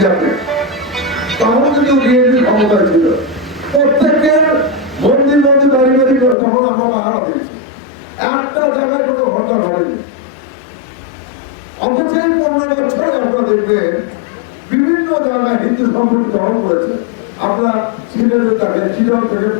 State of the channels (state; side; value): drops out; right; at 6.4 s